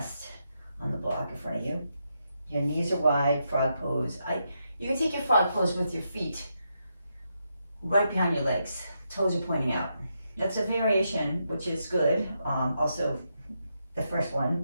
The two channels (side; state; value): both; inverted; correlation -0.82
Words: on the block in front of you. Your knees are wide, frog pose. You can take your frog pose with your feet right behind your legs. Toes are pointing out. That's a variation, which is good. Also, the first